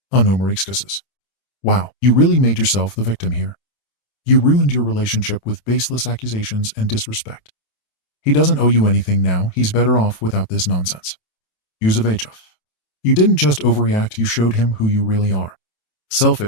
AmITheA. Wow, you really made yourself the victim here. You ruined your relationship with baseless accusations and disrespect. He doesn't owe you anything now. He's better off without this nonsense. Use of HF. You didn't just overreact, you showed him who you really are.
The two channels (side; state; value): right; late; 28 ms